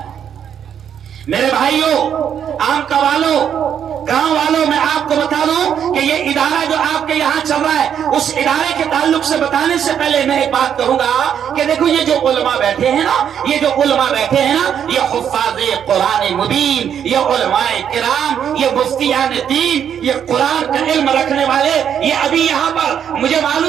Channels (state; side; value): quieter; left; 8.7 dB